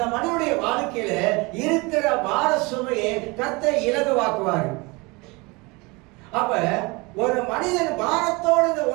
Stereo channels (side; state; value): left; quieter; 26.0 dB